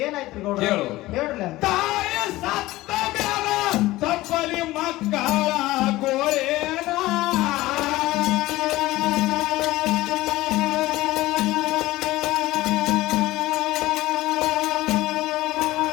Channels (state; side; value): quieter; right; 17.8 dB